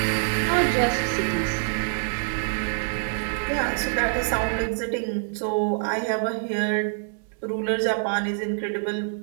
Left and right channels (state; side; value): silent; left; digital silence